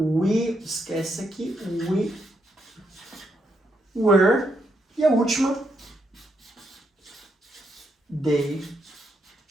esquece aqui, we were. E a última, they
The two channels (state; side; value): normal; both; correlation 0.78